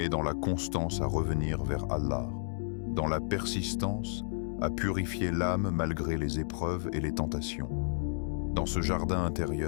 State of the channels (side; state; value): right; silent; digital silence